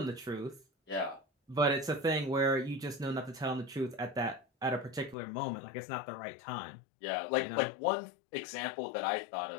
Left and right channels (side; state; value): right; drops out; at 5.2 s